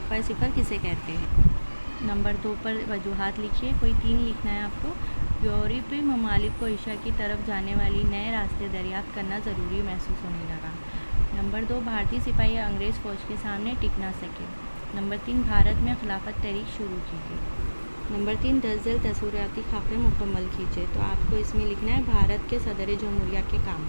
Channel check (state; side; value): inverted; both; correlation -1.00